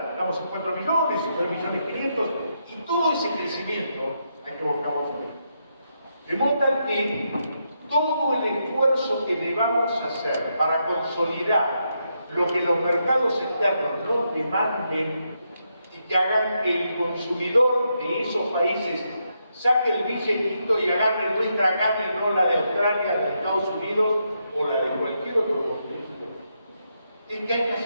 estamos en 4 millones, 9.500.000, y todo ese crecimiento hay que buscarlo fuera. De modo tal que todo el esfuerzo que debamos hacer para consolidar lo que los mercados externos no demanden y que hagan que el consumidor de esos países saque el billetito y agarre nuestra carne, no la de Australia, de Estados Unidos o la de cualquier otro continente. Es que hay que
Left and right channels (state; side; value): inverted; both; correlation -0.81